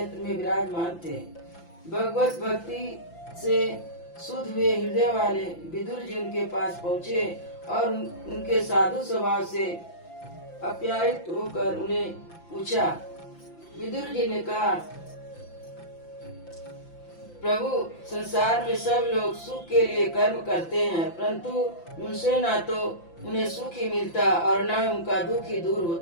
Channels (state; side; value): late; right; 5.8 ms